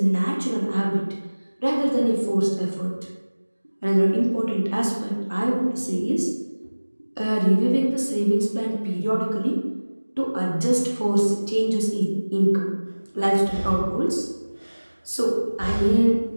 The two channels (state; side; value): inverted; both; correlation -1.00